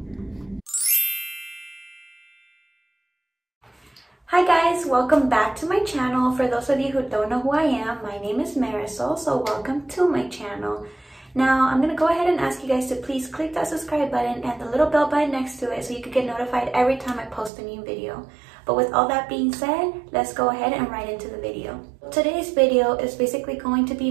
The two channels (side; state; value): left; drops out; at 17.5 s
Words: Hi guys, welcome back to my channel. For those of you who don't know who I am, my name is Marisol, so welcome to my channel. Now, I'm gonna go ahead and ask you guys to please click that subscribe button and the little bell button next to it so you can get notified every time I post a new video. But with all that being said, let's go ahead and right into the video. Today's video is basically going to